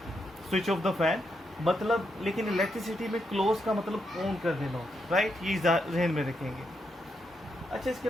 switch off the fan मतलब। लेकिन इलेक्ट्रिसिटी में क्लोज का मतलब ऑन कर देना, राइट, ये जहन में रखेंगे। अच्छा, इसके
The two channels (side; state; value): both; normal; correlation 0.81